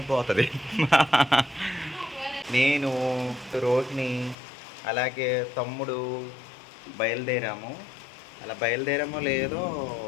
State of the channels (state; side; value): drops out; right; at 4.4 s